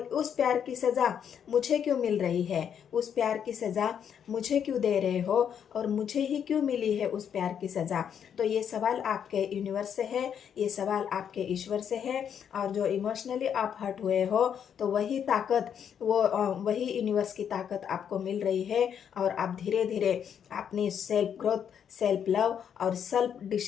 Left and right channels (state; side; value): quieter; right; 8.3 dB